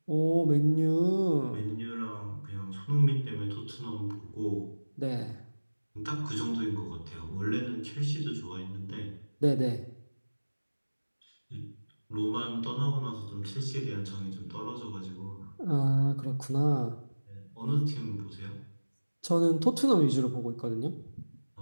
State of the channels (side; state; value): both; inverted; correlation -1.00